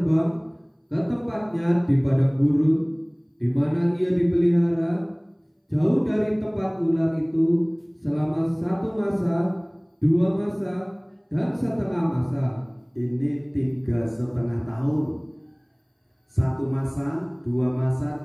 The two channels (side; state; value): both; identical; correlation 1.00